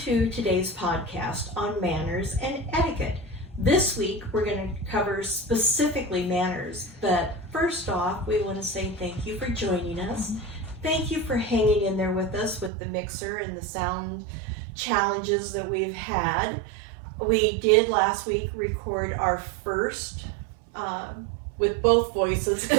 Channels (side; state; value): left; drops out; at 12.7 s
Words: to today's podcast on manners and etiquette. This week we're going to cover specifically manners, but first off we want to say thank you for joining us. Thank you for hanging in there with us with the mixer and the sound challenges that we've had. We did last week record our first with both voices